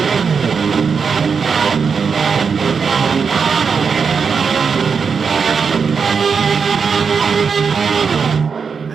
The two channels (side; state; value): left; quieter; 5.8 dB